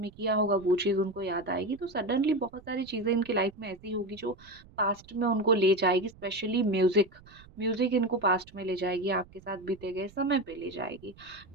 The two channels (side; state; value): right; noise; rumble, 23 dB below the sound